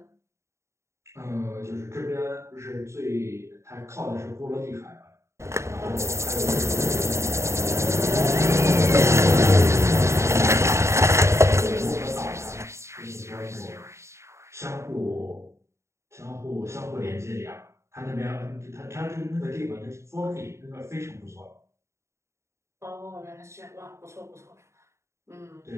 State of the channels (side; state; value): left; late; 0.14 ms